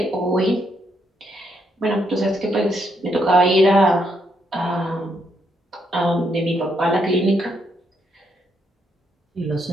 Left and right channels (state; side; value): normal; both; correlation 0.76